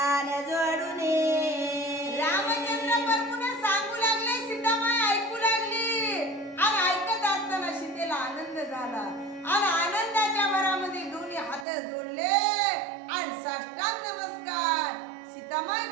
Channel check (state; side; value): drops out; left; at 11.7 s